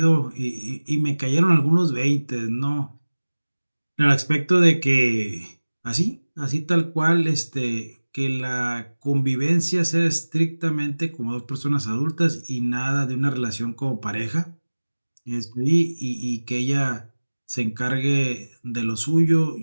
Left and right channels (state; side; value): inverted; both; correlation -1.00